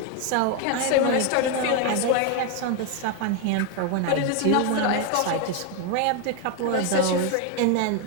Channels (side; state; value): both; different; correlation 0.01